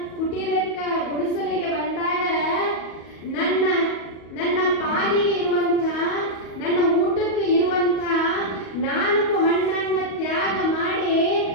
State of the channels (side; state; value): right; late; 37 ms